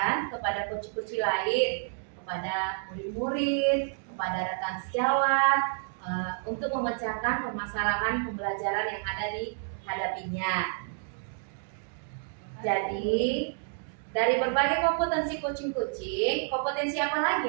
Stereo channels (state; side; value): silent; left; digital silence